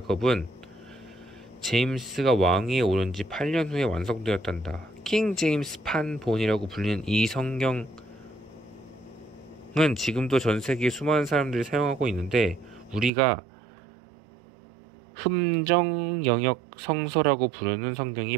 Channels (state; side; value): drops out; left; at 13.1 s